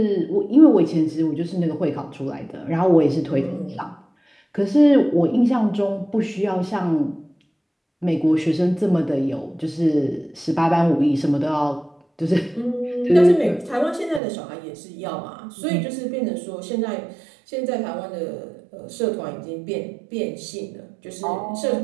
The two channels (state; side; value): drops out; left; at 14.2 s